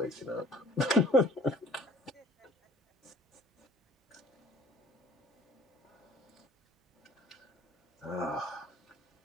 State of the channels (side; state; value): both; normal; correlation 0.53